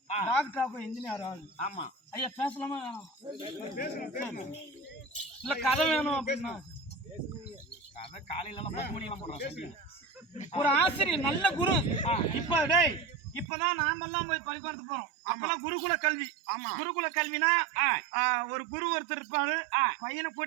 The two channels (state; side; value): drops out; left; at 13.5 s